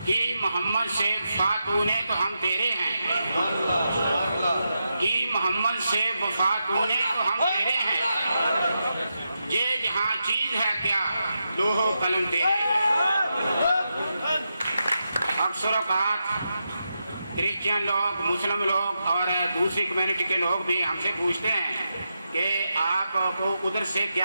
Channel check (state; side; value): inverted; both; correlation -0.87